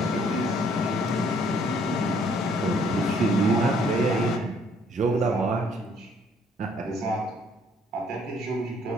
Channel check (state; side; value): normal; both; correlation 0.63